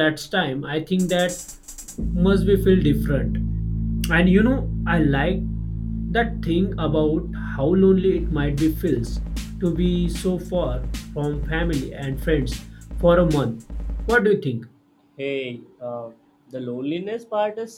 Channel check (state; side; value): identical; both; correlation 1.00